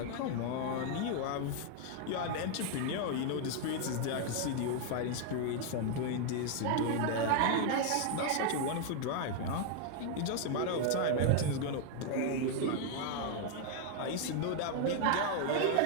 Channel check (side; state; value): both; different; correlation 0.00